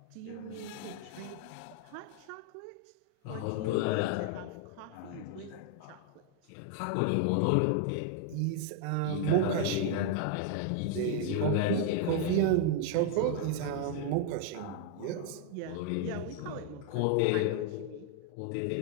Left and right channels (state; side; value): different; both; correlation 0.00